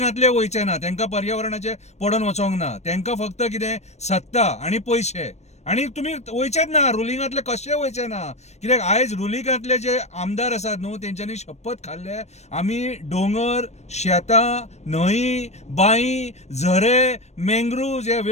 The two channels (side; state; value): right; late; 0.32 ms